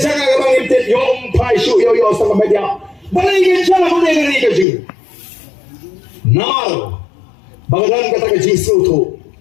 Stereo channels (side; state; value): right; drops out; at 4.7 s